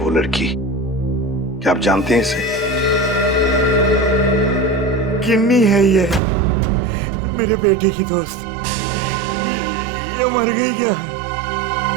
लड़की। क्या आप जानते हैं इसे? किन्नी है ये, मेरे बेटे की दोस्त। ये मर गई क्या?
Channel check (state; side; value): drops out; left; at 6.2 s